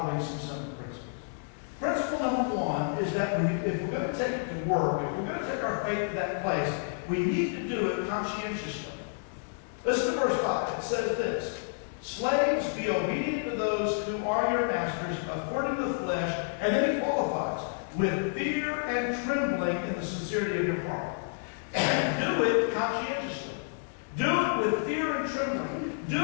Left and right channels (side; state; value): right; silent; digital silence